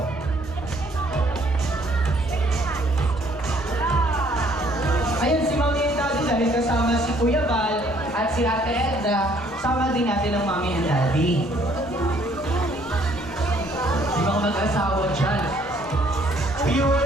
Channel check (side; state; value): both; normal; correlation 0.63